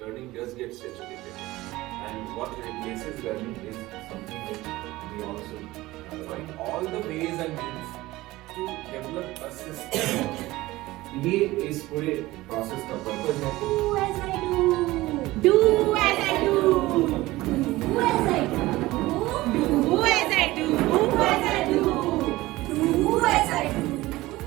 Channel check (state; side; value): quieter; left; 18.6 dB